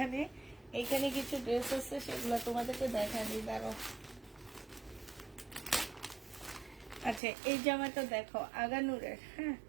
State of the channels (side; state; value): left; drops out; at 7.2 s